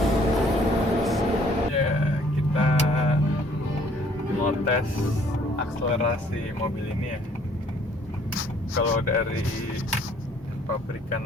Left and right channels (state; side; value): normal; both; correlation 0.61